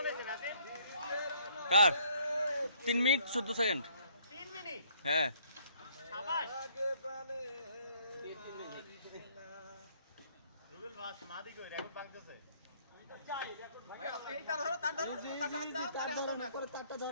কার 3 মিনিট 14 সেকেন্ড। 3 মিনিট? হ্যাঁ শাবাশ। রুবেল ভাই মাদি কই রেকর্ড ভাঙতেছে। এইটা ধরো, তার ধরো, তারটা ধরো না, করে তারটা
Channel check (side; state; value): both; inverted; correlation -0.63